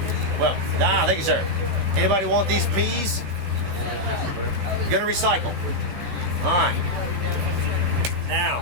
Well, thank you, sir. Anybody want these peas? Gonna recycle. All right. Now,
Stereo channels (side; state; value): left; late; 15 ms